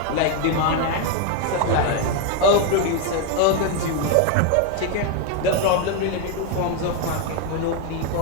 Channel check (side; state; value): both; different; correlation 0.01